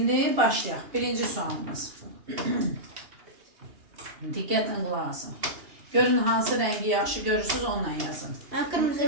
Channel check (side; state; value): left; late; 2.9 ms